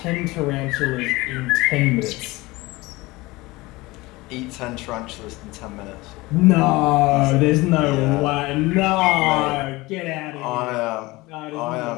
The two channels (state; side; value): quieter; right; 21.4 dB